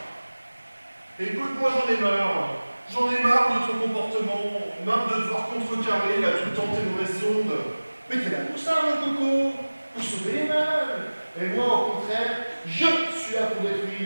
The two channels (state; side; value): inverted; both; correlation -1.00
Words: Écoute, moi j'en ai marre. J'en ai marre de ton comportement, marre de devoir contrecarrer là tout le temps tes mauvaises ondes. Mais t'es là pour ça, mon coco, pour sauver les meubles. Et moi, au contraire, je suis là pour